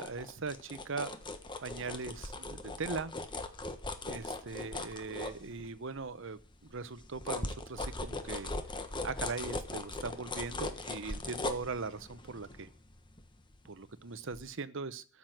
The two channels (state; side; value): normal; both; correlation 0.13